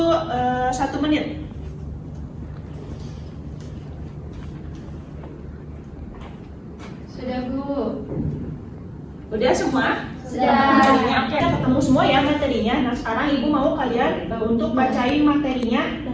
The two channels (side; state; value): both; identical; correlation 1.00